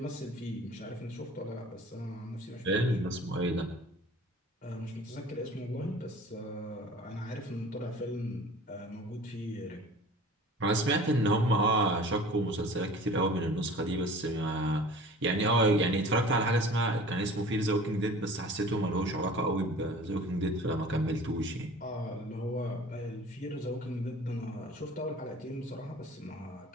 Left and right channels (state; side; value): normal; both; correlation 0.44